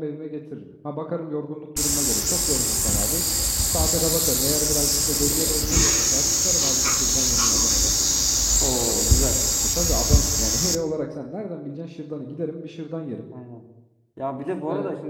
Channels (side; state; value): both; identical; correlation 1.00